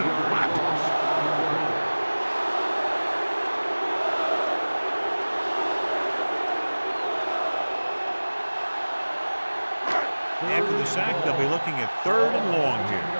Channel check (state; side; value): inverted; both; correlation -1.00